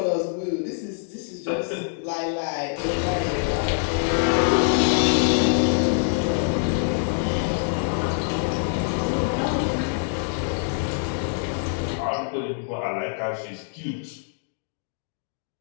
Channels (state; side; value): silent; right; digital silence